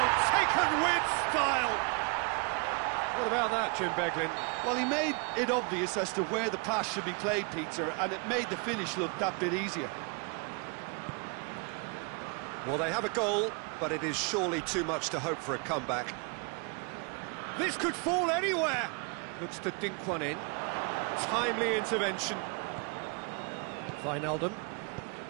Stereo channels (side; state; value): left; quieter; 34.4 dB